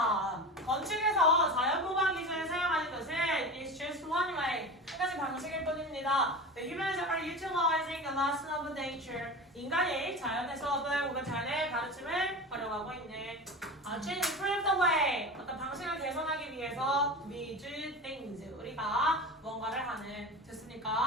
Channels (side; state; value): both; normal; correlation 0.30